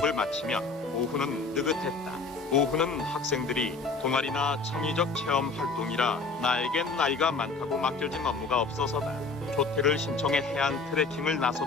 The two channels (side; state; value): right; quieter; 4.0 dB